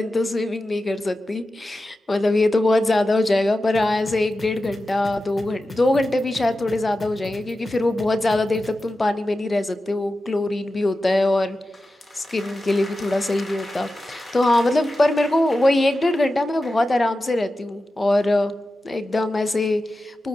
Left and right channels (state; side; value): normal; both; correlation 0.93